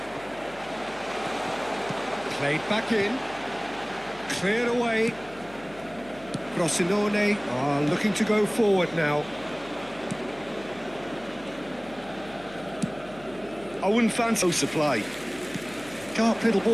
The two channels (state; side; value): noise; left; hum, 22 dB below the sound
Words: Played back in. Cleared away. Frosinone are looking to go forward now. I wouldn't fancy no supply. Sharp little